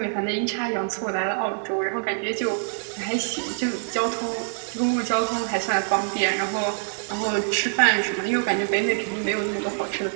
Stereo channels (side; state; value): left; silent; 56 dB below the other